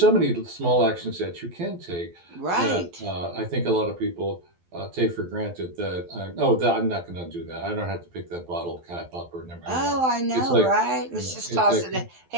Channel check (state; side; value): late; left; 12 ms